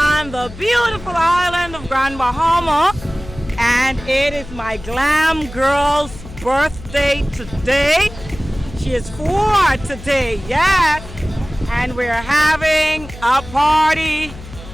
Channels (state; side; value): noise; left; hum, 15 dB below the sound